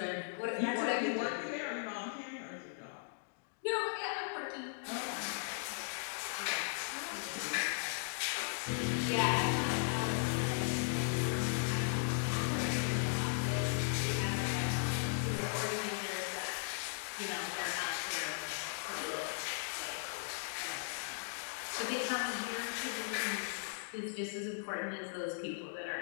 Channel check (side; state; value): right; silent; digital silence